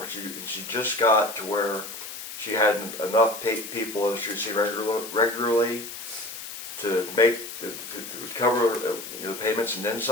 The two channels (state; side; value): noise; left; hiss, 10 dB below the sound